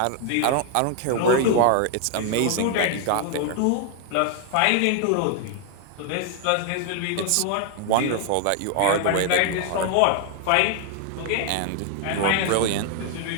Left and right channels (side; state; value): both; different; correlation 0.00